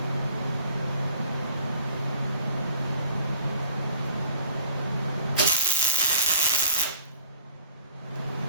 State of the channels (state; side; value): inverted; both; correlation -0.53